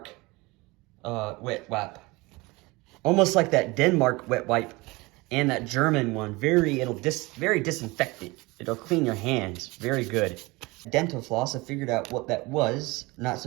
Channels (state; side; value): quieter; left; 23.4 dB